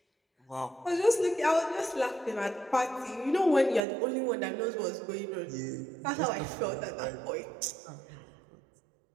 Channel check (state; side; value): drops out; left; at 3.8 s